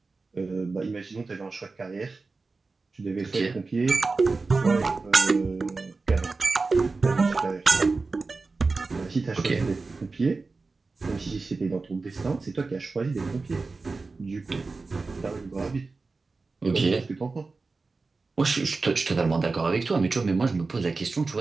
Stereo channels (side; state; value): left; quieter; 3.9 dB